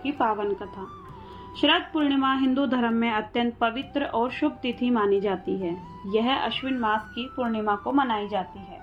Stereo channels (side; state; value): both; identical; correlation 1.00